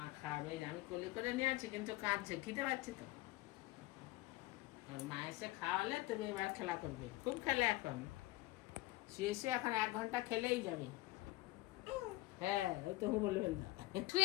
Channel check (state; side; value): quieter; right; 18.9 dB